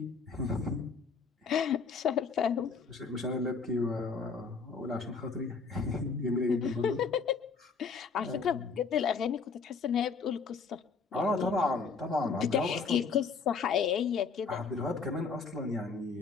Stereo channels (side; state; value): right; quieter; 5.1 dB